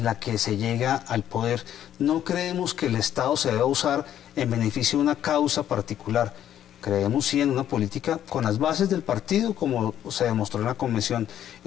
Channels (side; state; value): right; quieter; 10.9 dB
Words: la que se llega al poder. No creemos que el Estado se deba usar en beneficio de una causa particular. Creemos sí en una política con las bases del partido, como se demostró en la convención,